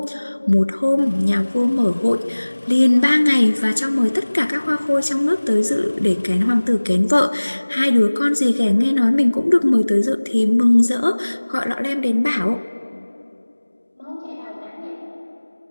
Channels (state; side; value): inverted; both; correlation -1.00